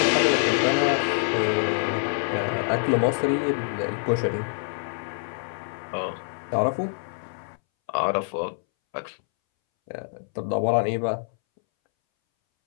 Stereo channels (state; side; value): silent; right; 61 dB below the other